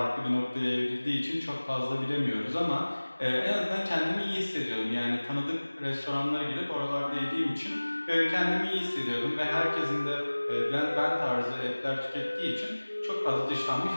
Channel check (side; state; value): both; inverted; correlation -1.00